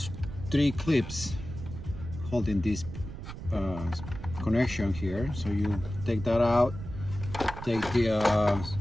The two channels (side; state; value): right; noise; rumble, 10 dB below the sound